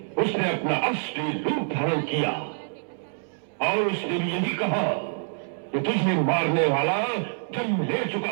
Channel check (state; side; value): silent; left; 61 dB below the other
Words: उसने अपना असली रूप धारण किया और उसने भी यही कहा कि तुझे मारने वाला जन्म ले